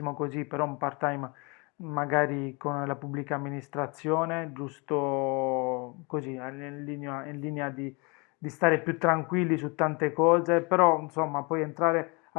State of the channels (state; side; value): quieter; right; 29.9 dB